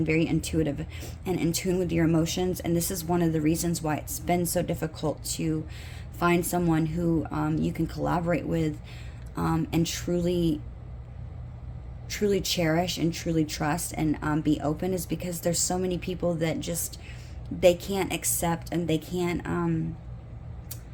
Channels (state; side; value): identical; both; correlation 1.00